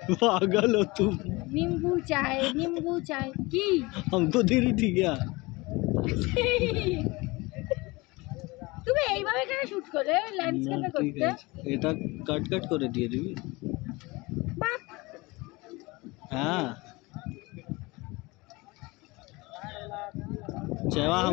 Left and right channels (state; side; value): quieter; right; 23.5 dB